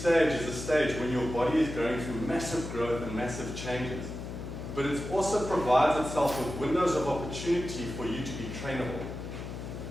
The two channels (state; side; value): noise; left; hum, 8 dB below the sound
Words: is a stage when your body is going through massive growth and massive changes. But it also provides itself with windows of opportunity for you to be trainable.